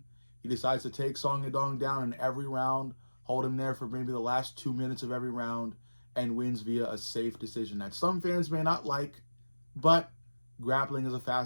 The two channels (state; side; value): inverted; both; correlation -1.00